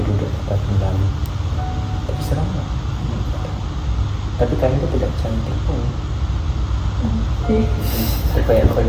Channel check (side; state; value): both; identical; correlation 1.00